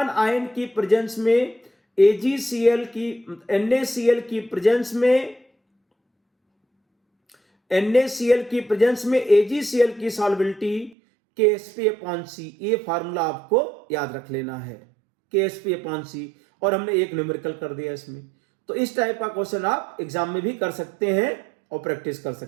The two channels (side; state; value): left; drops out; at 11.0 s